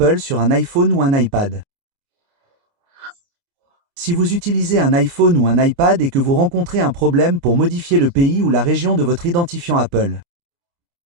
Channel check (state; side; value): late; left; 29 ms